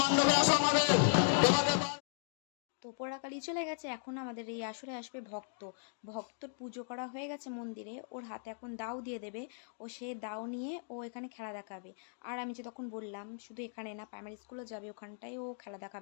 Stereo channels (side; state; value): right; silent; digital silence